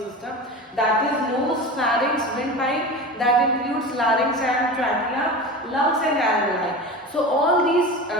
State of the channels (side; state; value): both; normal; correlation 0.29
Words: That is nose, pharynx, windpipe, that includes larynx and trachea, lungs and alveoli. So all these